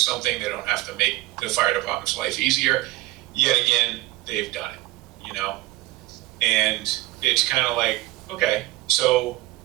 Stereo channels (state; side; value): quieter; left; 18.7 dB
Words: they don't have to make the fire department's life easier. Yet again, they've done it, And it's kind of like, okay, so